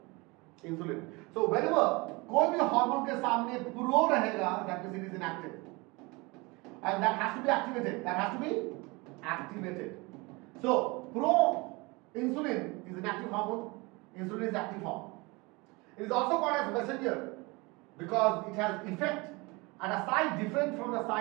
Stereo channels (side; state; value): left; quieter; 25.5 dB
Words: इंसुलिन. सो व्हेनेवर कोई भी हार्मोन के सामने प्रो रहेगा, that means it is inactive, and that has to be activated. That has to be activated. So proinsulin is an active hormone. Insulin is active form. It is also called as messenger because it has effect at a site different from the